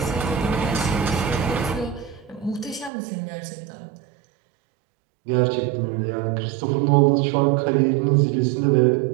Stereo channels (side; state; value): left; drops out; at 2.9 s